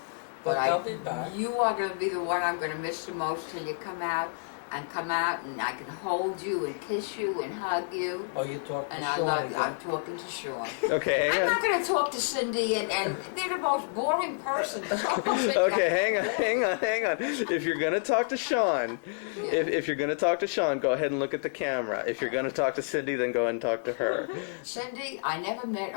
But they'll be back. You are going to be the one I'm going to miss the most till you come out, and I can hold you and kiss you and hug you. Oh, you talk to And Sean. I love you. I'm talking to Sean. Okay, hang I'm on. not going to talk to Cindy, and they're the most boring person. Okay, hang on. If you're gonna talk to Sean, if you're gonna talk to Sean, go ahead and look at the camera. If you're gonna talk to Cindy, then go ahead and talk to her. Cindy, I never met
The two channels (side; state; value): right; silent; digital silence